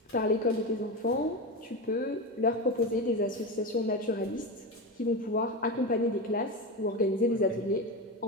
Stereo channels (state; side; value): normal; both; correlation 0.18